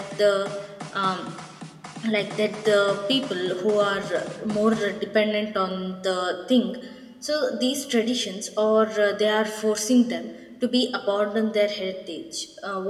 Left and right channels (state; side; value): identical; both; correlation 1.00